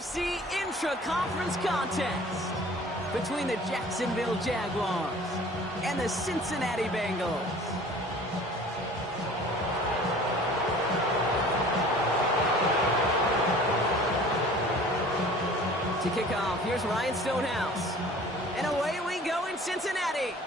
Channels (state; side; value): normal; both; correlation 0.47